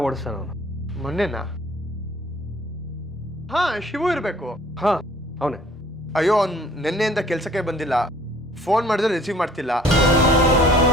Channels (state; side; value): normal; both; correlation 0.54